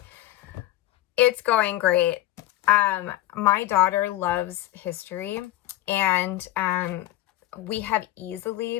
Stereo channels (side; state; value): right; quieter; 15.1 dB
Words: It's going great. My daughter loves history, and we have easily